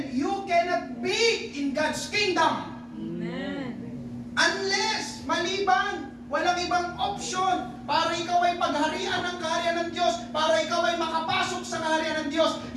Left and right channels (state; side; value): identical; both; correlation 1.00